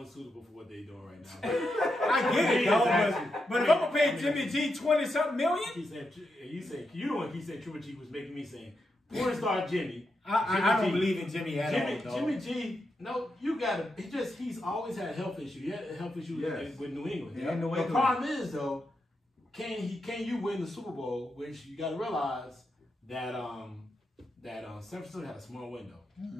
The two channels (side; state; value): both; normal; correlation 0.85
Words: for what they're doing right now. I get it, though. But if I'm gonna pay Jimmy G $20-something million, he said Triple G was making me saying, porn star Jimmy. I don't believe in Jimmy at all. Jimmy G. No, you gotta. He's always had a health issue. He had a health issue with New England. Yeah, the problem is though, can you win the Super Bowl? Which you gotta realize that San Francisco had a small window.